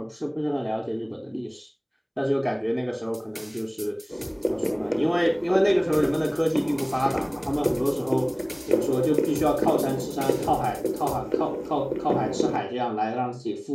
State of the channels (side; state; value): both; identical; correlation 1.00